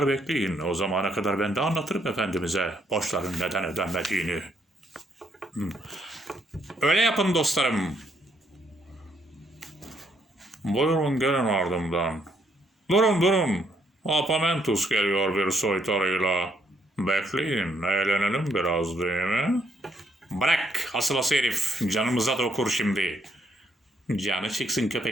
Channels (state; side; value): normal; both; correlation 0.71